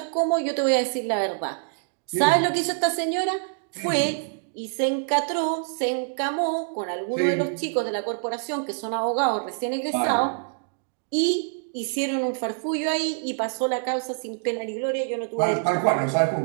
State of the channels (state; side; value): silent; left; digital silence